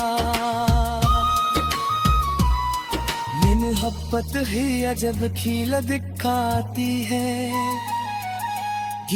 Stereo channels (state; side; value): identical; both; correlation 1.00